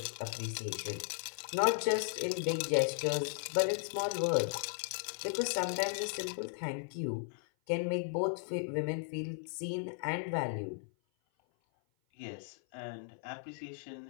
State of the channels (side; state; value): right; silent; 54 dB below the other